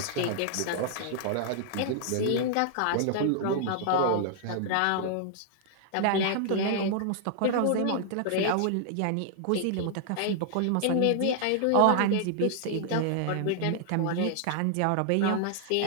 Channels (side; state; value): both; different; correlation -0.01